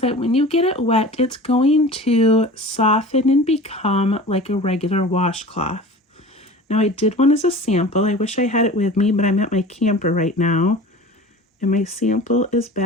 that when you get it wet, it's going to soften and become like a regular washcloth. Now I did one as a sample. I wish I had it with me, but I'm at my camper right now, and my sample is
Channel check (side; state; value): both; normal; correlation 0.38